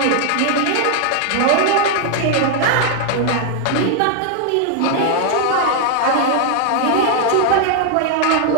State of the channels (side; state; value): both; different; correlation 0.00